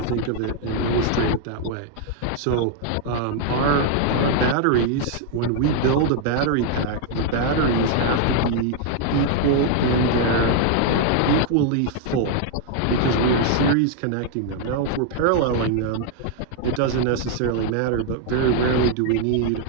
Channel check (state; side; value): different; both; correlation 0.00